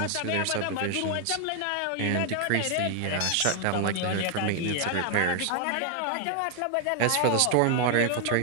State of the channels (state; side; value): different; both; correlation 0.00